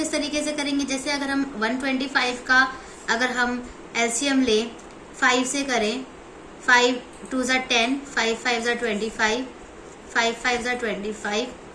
तरीके से करेंगे, जैसे अगर हम 125 का अगर हम एलसीएम लें 5 से करें, 5 2 = 10, 5 5 = 25, 5 5 = 25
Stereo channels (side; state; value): both; identical; correlation 1.00